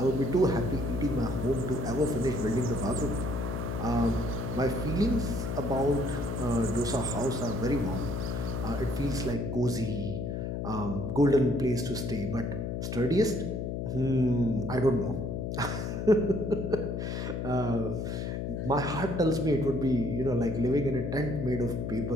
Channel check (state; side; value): noise; left; hum, 3 dB below the sound